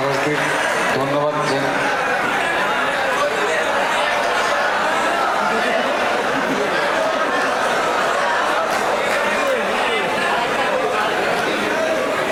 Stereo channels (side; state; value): both; identical; correlation 1.00